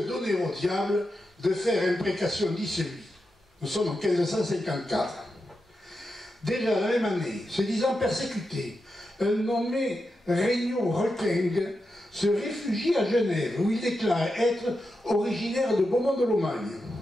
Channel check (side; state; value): both; normal; correlation 0.88